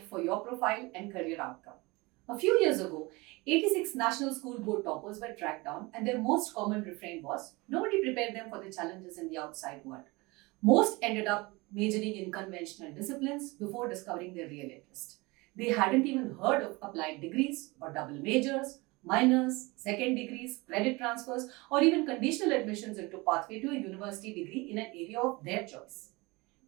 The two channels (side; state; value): left; quieter; 24.1 dB